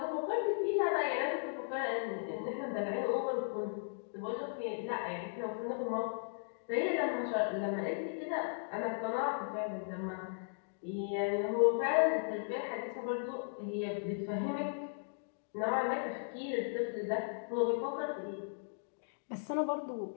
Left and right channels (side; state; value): right; silent; digital silence